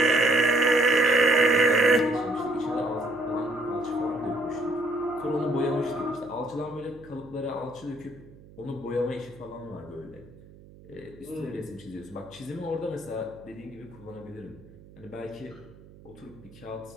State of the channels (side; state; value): right; noise; hum, 21 dB below the sound